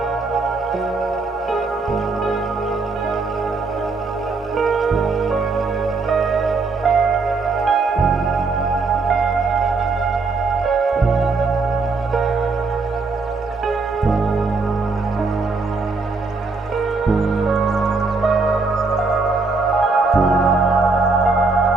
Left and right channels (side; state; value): left; quieter; 4.0 dB